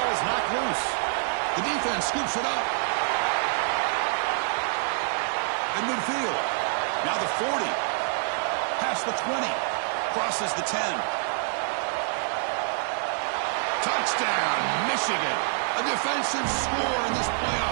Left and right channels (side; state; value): left; silent; 60 dB below the other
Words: is knocked loose. The defense scoops it up. In midfield. Now the 40. Past the 20. Crosses the 10. Touchdown, Michigan. A defensive score in this